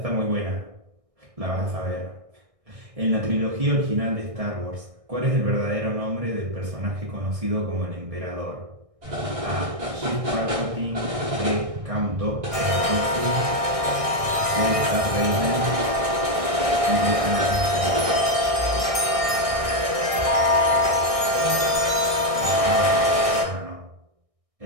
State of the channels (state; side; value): late; left; 1.6 ms